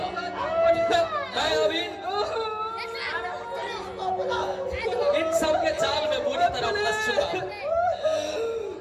मैं अभी इन सब के जाल में बुरी तरह फंस चुका हूं।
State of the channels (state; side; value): identical; both; correlation 1.00